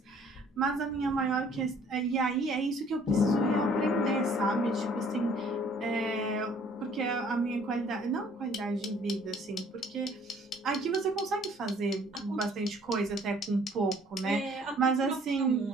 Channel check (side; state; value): both; normal; correlation 0.57